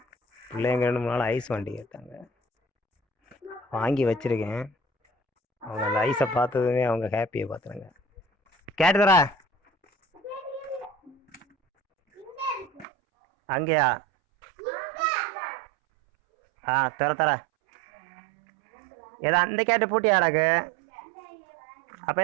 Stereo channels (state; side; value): drops out; left; at 12.9 s